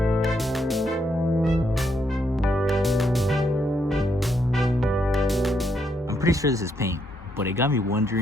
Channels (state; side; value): normal; both; correlation 0.76